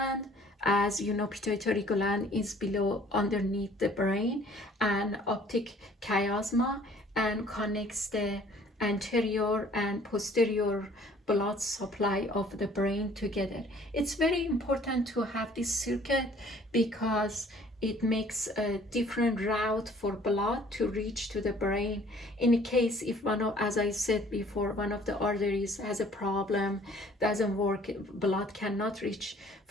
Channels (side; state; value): both; normal; correlation 0.55